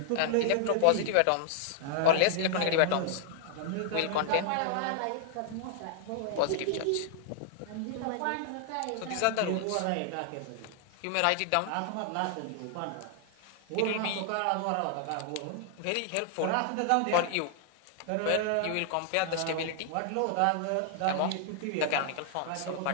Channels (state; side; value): different; both; correlation -0.01